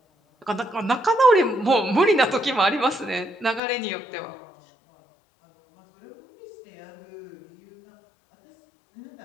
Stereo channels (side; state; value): right; drops out; at 3.6 s